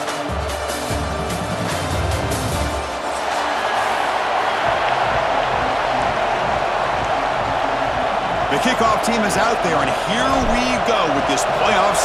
The kickoff team is out there, and here we go with this playoff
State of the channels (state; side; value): identical; both; correlation 1.00